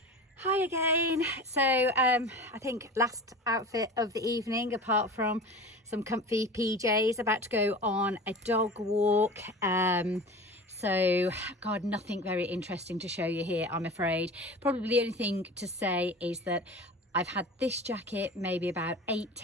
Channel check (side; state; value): both; normal; correlation 0.34